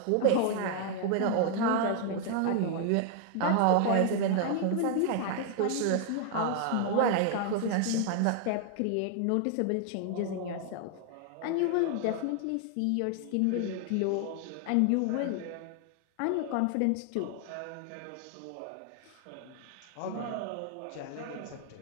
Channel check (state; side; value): different; both; correlation 0.00